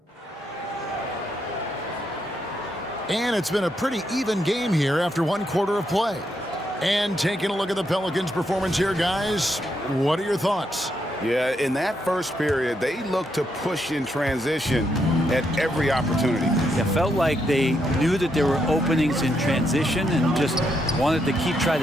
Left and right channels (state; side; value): normal; both; correlation 0.79